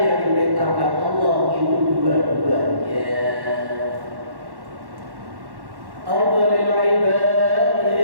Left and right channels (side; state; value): left; late; 1.1 ms